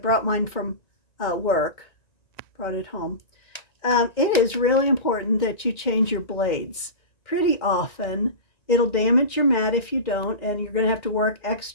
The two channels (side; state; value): right; late; 1.9 ms